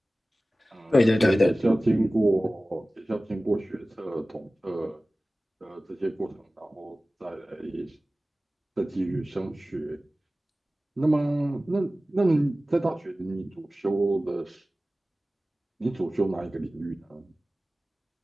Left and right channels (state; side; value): normal; both; correlation 0.97